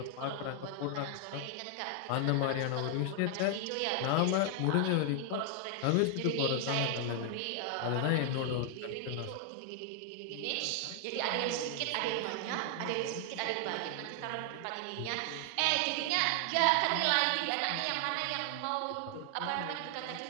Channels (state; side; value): different; both; correlation 0.00